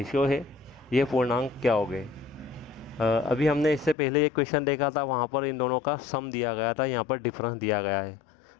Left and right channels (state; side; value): drops out; right; at 4.0 s